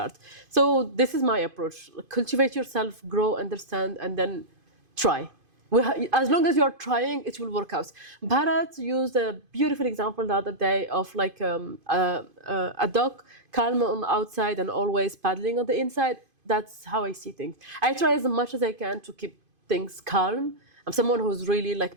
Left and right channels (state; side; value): late; left; 2.5 ms